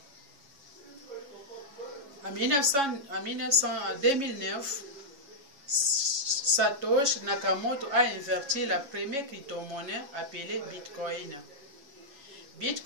En 2009, Satoshi Nakamoto a inventé la première crypto-monnaie appelée Bitcoin.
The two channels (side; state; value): left; late; 7.2 ms